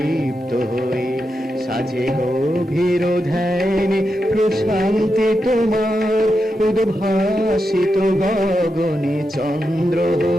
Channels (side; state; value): both; normal; correlation 0.87